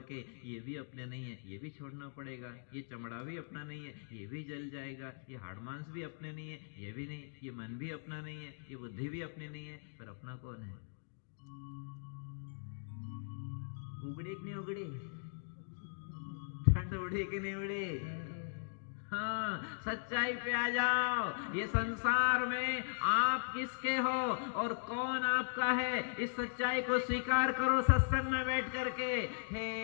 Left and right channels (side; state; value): right; silent; digital silence